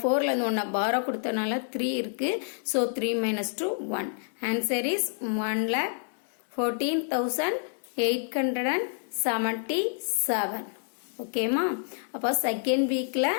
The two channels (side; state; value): right; silent; digital silence